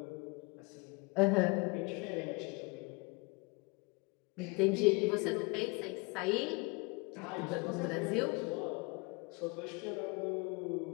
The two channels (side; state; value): right; quieter; 28.3 dB